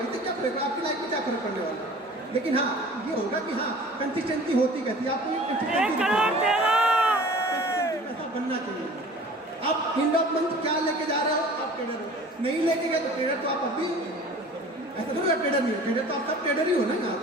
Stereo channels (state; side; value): normal; both; correlation 0.45